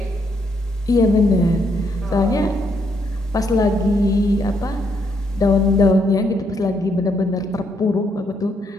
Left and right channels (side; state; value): both; normal; correlation 0.74